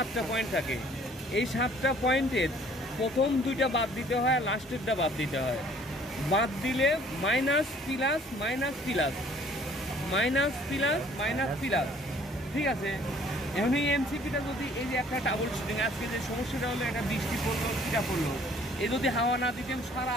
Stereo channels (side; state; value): both; normal; correlation 0.56